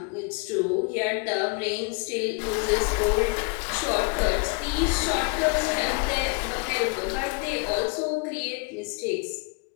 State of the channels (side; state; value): right; quieter; 31.6 dB